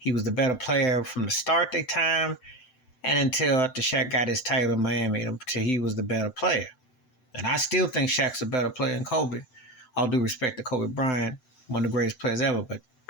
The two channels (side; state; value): right; late; 7.9 ms